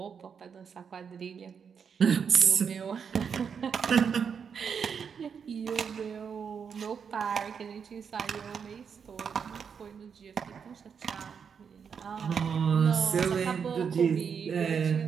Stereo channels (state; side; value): quieter; left; 6.7 dB